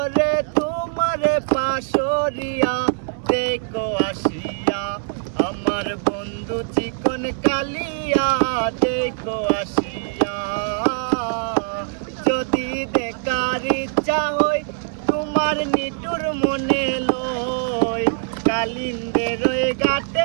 তোমারে পাশরিয়া দেখো আসিয়া। আমার বন্ধু চিকন কালিয়া দেখো আসিয়া। যদি দেখার ইচ্ছা হয় তোমার নিটুর মনে লয়, কালিন্দের ওই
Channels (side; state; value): left; silent; digital silence